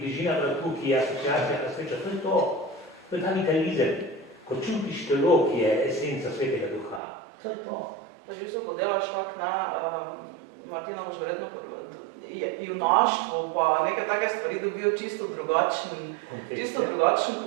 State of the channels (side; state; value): left; drops out; at 7.0 s